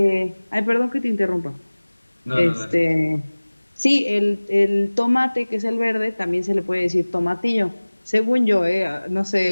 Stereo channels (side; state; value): both; inverted; correlation -1.00